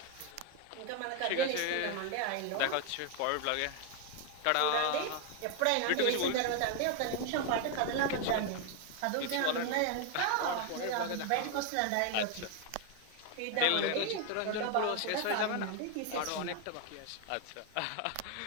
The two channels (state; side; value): different; both; correlation 0.01